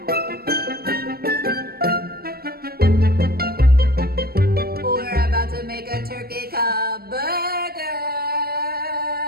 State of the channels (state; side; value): late; left; 0.44 ms